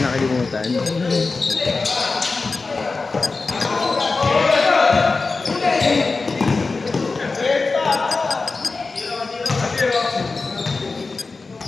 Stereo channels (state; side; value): quieter; right; 4.0 dB